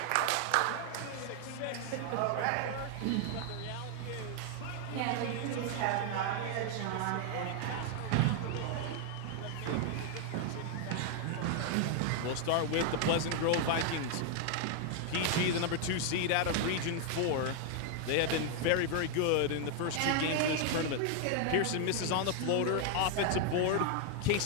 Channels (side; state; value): both; different; correlation 0.00